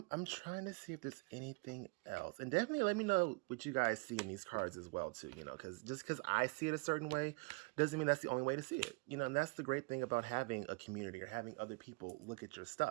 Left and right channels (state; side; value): quieter; left; 28.7 dB